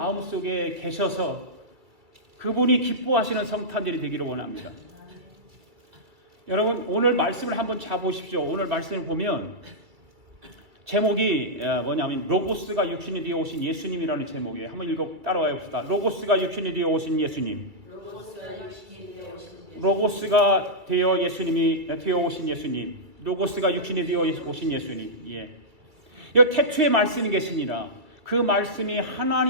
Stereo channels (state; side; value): late; left; 2.3 ms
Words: 계셔서 그분이 기뻐하시는 성탄절이 되기를 원합니다. 여러분 오늘 말씀을 한번 잡으십시오. 오늘 말씀을 보면 제목이 뭐냐면 로고스가 육신이 되어 오신 예수님이라는 제목이에요. 한번 따라와 봅시다. 로고스가 육신이 되어 오신 예수님. 로고스가 되어 오신 예수님. 로고스가 육신이 되어 오신 예수님. 예. 여기 태초에 말씀이 계시니라. 그 말씀이